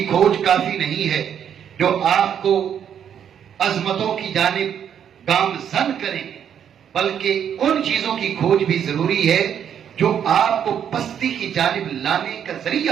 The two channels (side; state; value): left; quieter; 8.8 dB